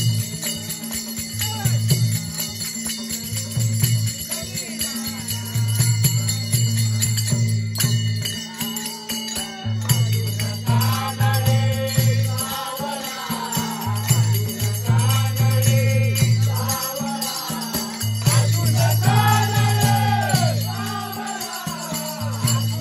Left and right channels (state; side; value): identical; both; correlation 1.00